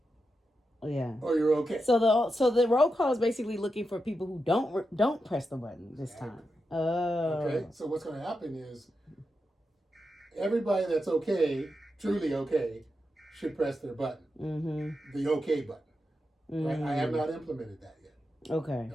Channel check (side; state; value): both; normal; correlation 0.87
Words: yeah, or you're okay. So the roll call is basically looking for people who don't press the button this time. Oh. Okay. So what's going to happen is everybody that's okay, truly okay, should press their button. Mm-hmm. The okay button. Mm-hmm. Right? I have not implemented that yet. Okay.